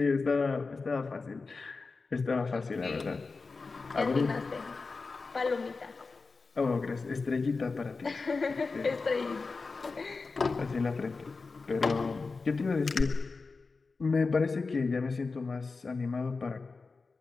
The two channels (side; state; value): right; quieter; 4.2 dB